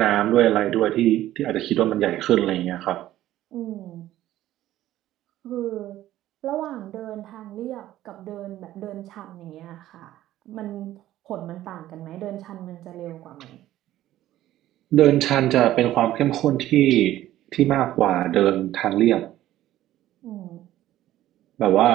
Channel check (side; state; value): left; quieter; 14.0 dB